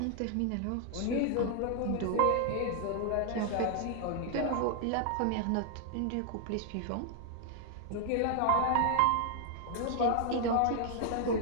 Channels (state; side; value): different; both; correlation 0.00